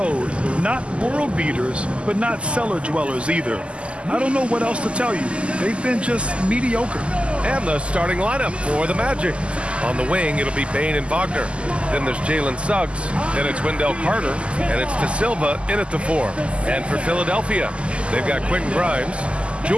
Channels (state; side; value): late; left; 0.055 ms